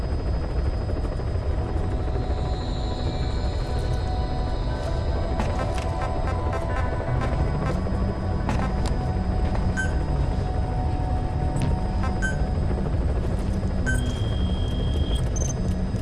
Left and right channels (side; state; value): both; identical; correlation 1.00